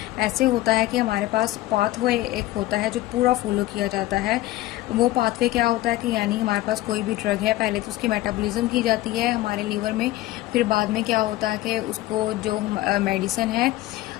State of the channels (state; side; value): quieter; right; 16.4 dB